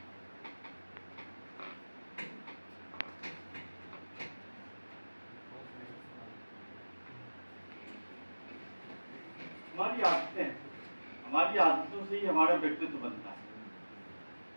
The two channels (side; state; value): both; inverted; correlation -1.00